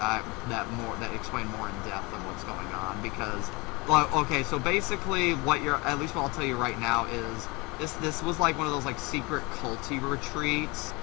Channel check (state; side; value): quieter; right; 26.3 dB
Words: explain more in depth of what's going on. Because, well, okay, so basically, at least what I'll tell you right now is this was like one of those like secret culty retreats.